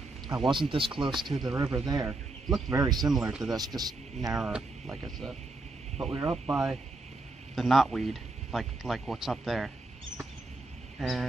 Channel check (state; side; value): quieter; left; 3.1 dB